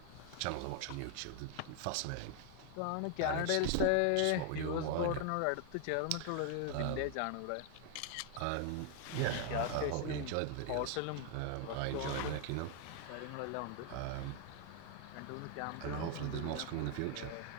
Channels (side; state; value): both; different; correlation 0.00